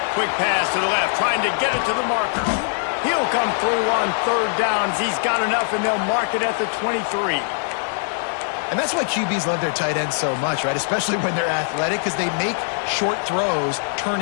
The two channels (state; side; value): silent; right; 64 dB below the other